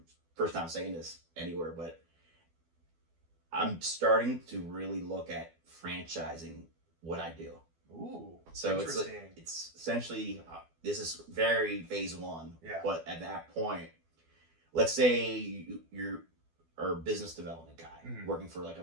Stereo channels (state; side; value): late; left; 12 ms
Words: first time saying this anywhere, but I'm starting to really look at franchising what I do. Ooh, So interesting. it's essentially this is very phase 1. Yeah. But at that point, let's say you're a business development guy working for like